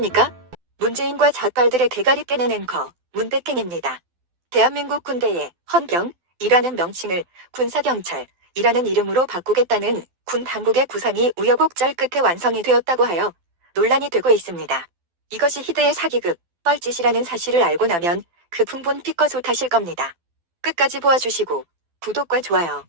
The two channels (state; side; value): late; left; 12 ms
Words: 문재인과 잣발들의 대가리 빼는 앵커 문백행입니다. 대한민국 군대의 헌병이라는 명칭을 군사경찰이라는 이름으로 바꾸겠다는 군 당국의 구상이 우여곡절 끝에 완성이 되었다고 하여 논란이 되고 있습니다. 이것이 희대의 사기극, 뻘짓이라는 사실을 알고 나면 그 풍분 피껏 하실 겁니다. 끝까지 보아주시고 구독과 좋아요,